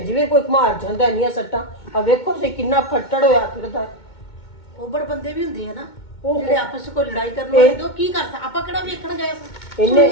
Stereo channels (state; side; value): late; right; 2.2 ms